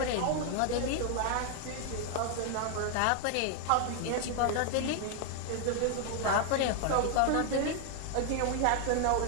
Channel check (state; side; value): different; both; correlation 0.00